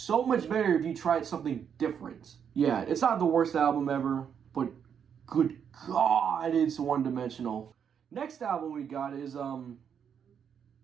much better if you tried something different. Yeah, it's not the worst album ever, but good God, it's one-dimensional. Next album we got is, oh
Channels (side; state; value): left; quieter; 7.7 dB